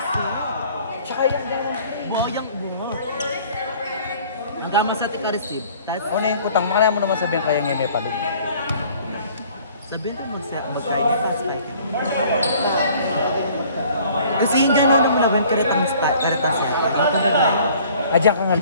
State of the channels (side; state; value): both; inverted; correlation -0.54